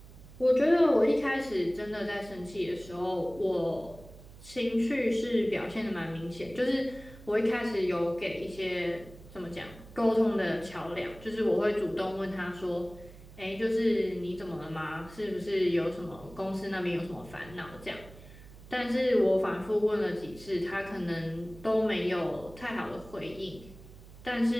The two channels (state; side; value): noise; right; hum, 19 dB below the sound